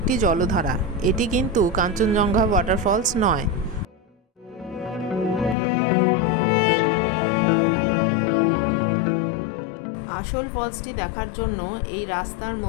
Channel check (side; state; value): right; drops out; at 5.6 s